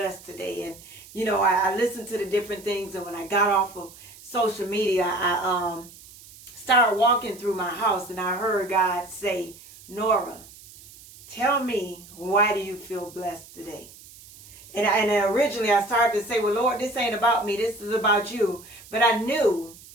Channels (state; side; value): noise; right; hiss, 20 dB below the sound